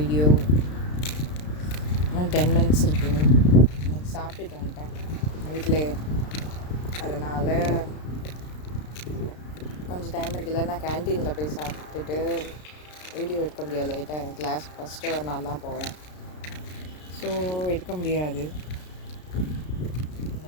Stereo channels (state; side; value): late; right; 33 ms